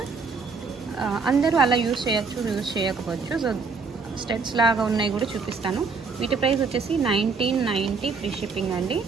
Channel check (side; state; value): left; quieter; 4.7 dB